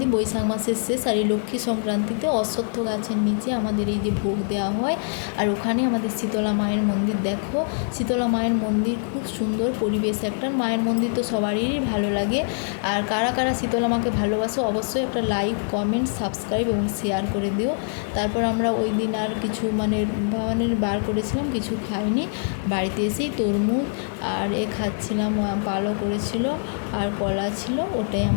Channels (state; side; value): silent; right; digital silence